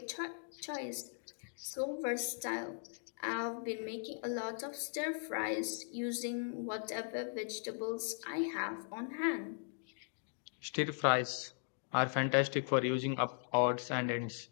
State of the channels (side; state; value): right; silent; digital silence